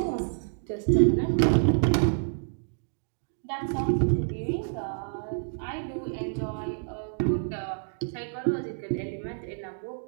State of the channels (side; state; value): left; silent; digital silence